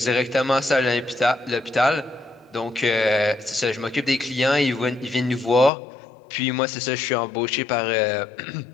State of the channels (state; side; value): drops out; right; at 5.7 s